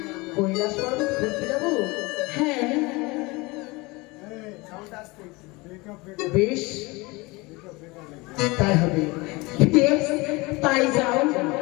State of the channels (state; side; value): quieter; right; 24.2 dB